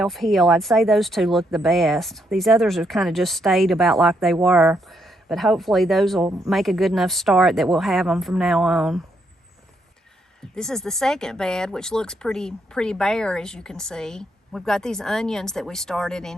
I'd say those two look the best. These others have kind of just stayed about like they were, but hopefully those will make a good enough start that we'll have them from now on. This is the second bed, which looks pretty bare, as you can see. We've got these onions that we started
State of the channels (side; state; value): both; normal; correlation 0.76